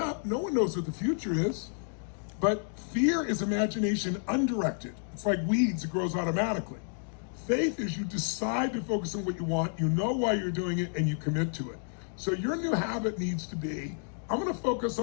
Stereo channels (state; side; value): silent; right; digital silence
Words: No one knows what the future is. But fear is imagination undirected. It's like weeds, it grows automatically. Faith is you decide to focus on what you want, you know why you're doing it, and you commit to it. So your new habit needs to be, I'm gonna focus